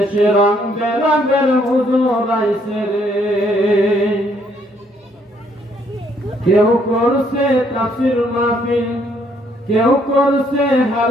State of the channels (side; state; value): both; normal; correlation 0.68